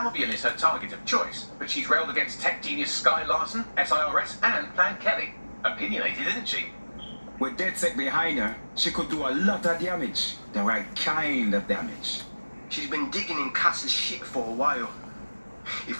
is her target of choice, but she's railed against tech genius Sky Larson, SIRS, and Plan Kelly. Opinionated, isn't she? With Ded-Sec behind her, she could do a lot of damage. The right kind of damage. She's been digging in Cass's shit for a while. If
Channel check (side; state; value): both; inverted; correlation -1.00